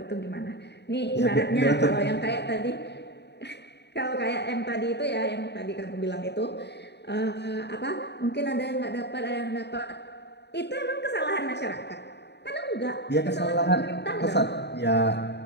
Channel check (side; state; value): right; late; 0.50 ms